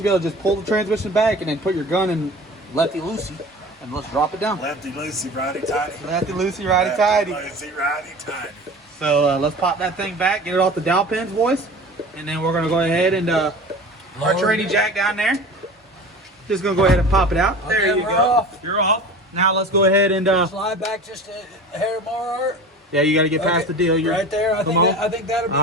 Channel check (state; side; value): normal; both; correlation 0.37